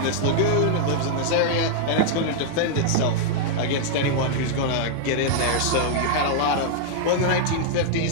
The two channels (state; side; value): different; both; correlation -0.01